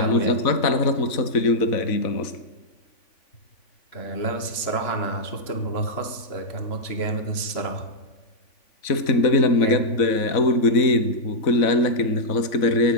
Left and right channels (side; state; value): right; late; 3.5 ms